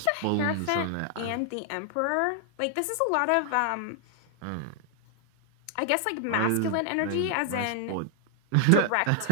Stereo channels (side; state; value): both; different; correlation 0.00